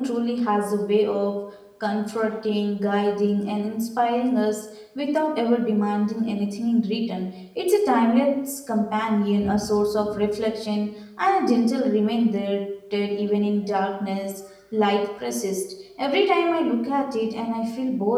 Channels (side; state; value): both; identical; correlation 1.00